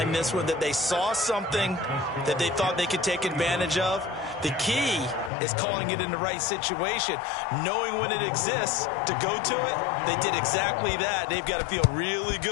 this one, that they saw something that they thought they could take advantage of? The key is calling it in the right situation, knowing when it exists to go to it. They did exactly that. They've got to feel really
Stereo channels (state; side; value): drops out; right; at 5.3 s